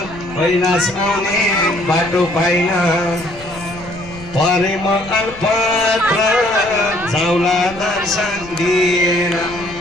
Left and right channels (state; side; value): noise; left; rumble, 18 dB below the sound